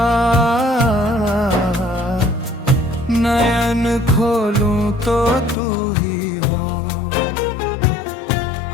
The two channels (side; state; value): right; drops out; at 5.6 s